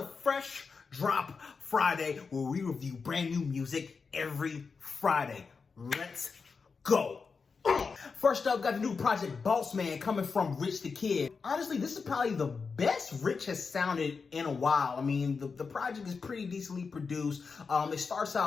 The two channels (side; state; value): right; quieter; 5.0 dB